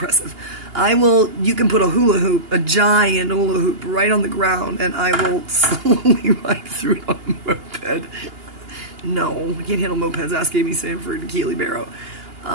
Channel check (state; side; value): late; left; 2.8 ms